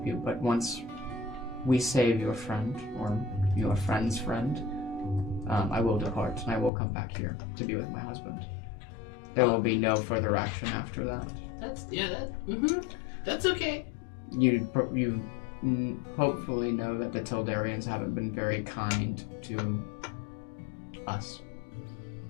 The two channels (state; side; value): drops out; right; at 6.7 s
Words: you, but once we save your friend, or your friend's friend, I will depart, and I will come back here to be with my husband. There will be no further action after that. That's okay. You hopefully know that the Tildarians haven't been very kind to us.